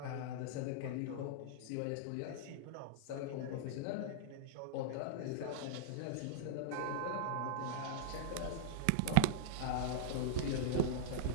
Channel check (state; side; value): different; both; correlation -0.02